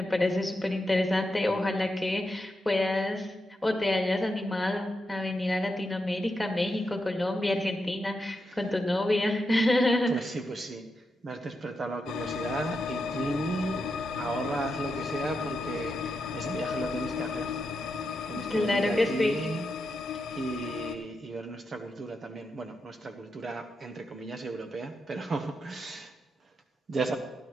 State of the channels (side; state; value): both; normal; correlation 0.86